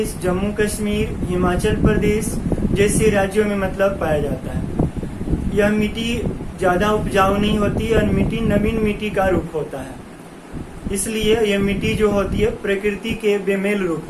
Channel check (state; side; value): identical; both; correlation 1.00